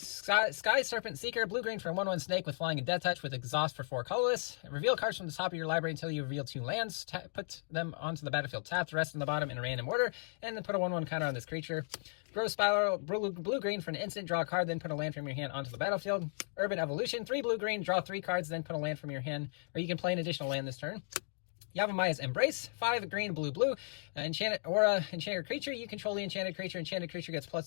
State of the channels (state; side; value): silent; right; digital silence